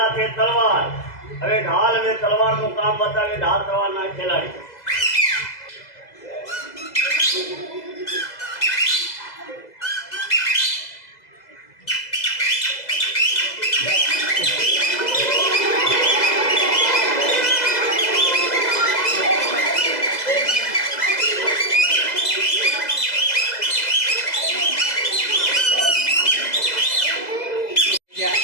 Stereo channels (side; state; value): right; late; 2.0 ms